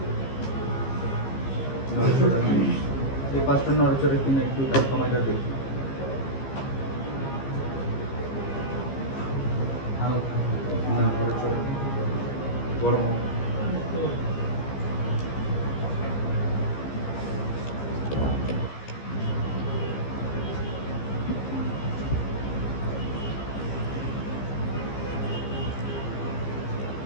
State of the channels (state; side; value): late; right; 15 ms